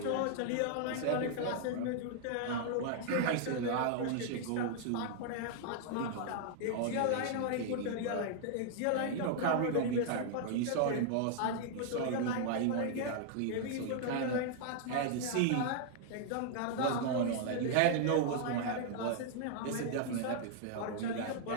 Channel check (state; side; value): different; both; correlation 0.00